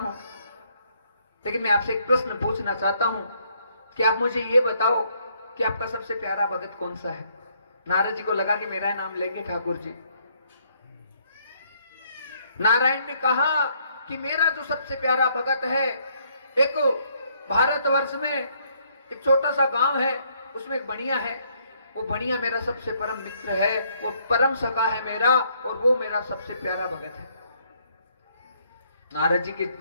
लेकिन मैं आपसे एक प्रश्न पूछना चाहता हूं कि आप मुझे ये बताओ कि आपका सबसे प्यारा भगत कौन सा है। नारद जी को लगा कि मेरा नाम लेंगे ठाकुर जी। नारायण ने कहा कि मेरा जो सबसे प्यारा भगत है, एक भारतवर्ष में एक छोटा सा गांव है, उसमें एक बनिया है, वो बनिया मेरा सबसे परम मित्र है, वो परम सखा है मेरा, और वो मेरा सबसे प्यारा भगत है। नारद जी की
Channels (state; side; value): inverted; both; correlation -0.69